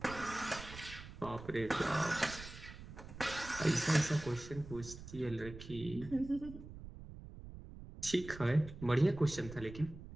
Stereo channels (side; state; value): right; noise; rumble, 13 dB below the sound